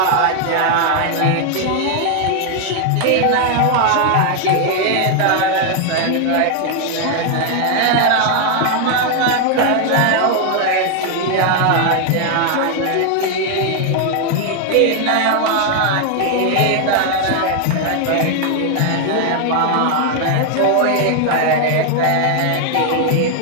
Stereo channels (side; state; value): both; different; correlation 0.00